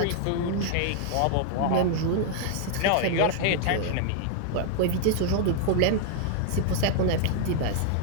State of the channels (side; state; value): both; different; correlation 0.00